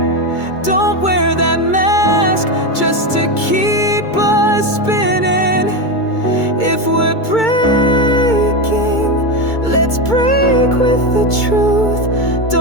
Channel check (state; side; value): late; right; 2.2 ms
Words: Don't wear that mask just to keep us spinning. If we're breaking, let's break with the truth.